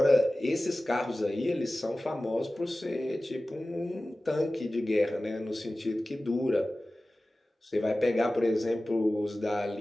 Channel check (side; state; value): both; normal; correlation 0.96